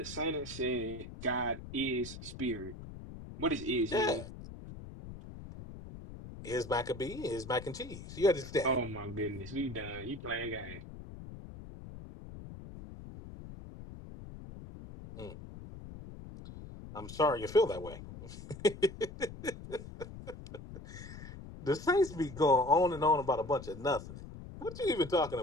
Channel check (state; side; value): noise; left; rumble, 13 dB below the sound